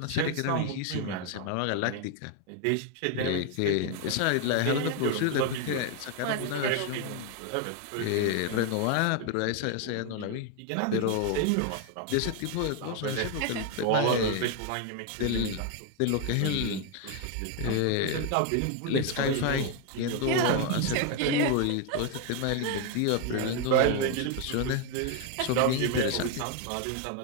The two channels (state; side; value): different; both; correlation 0.01